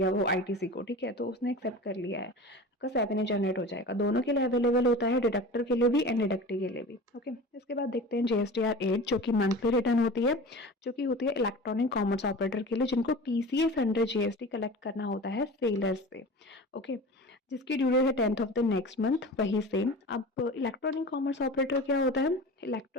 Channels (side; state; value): both; normal; correlation 0.35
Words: वो ITC को। ठीक है, तो उसने एक्सेप्ट कर लिया है, आपका 7A जनरेट हो जाएगा। दोनों के लिए अवेलेबल होता है, डिडक्टर के लिए भी एंड डिडक्टी के लिए भी। ओके, इसके बाद देखते हैं GSTR 8 जो कि मंथली रिटर्न होती है, जो कि होती है इलेक्ट्रॉनिक कॉमर्स ऑपरेटर के लिए जिनको TCS अंडर GST कलेक्ट करना होता है सेलर्स से। ओके, जिसकी ड्यू डेट है 10th of the next month, वही सेम। अब इलेक्ट्रॉनिक कॉमर्स ऑपरेटर क्या होता है?